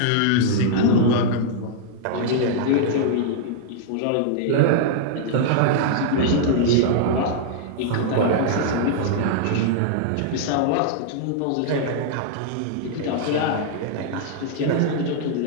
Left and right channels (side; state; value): both; different; correlation -0.01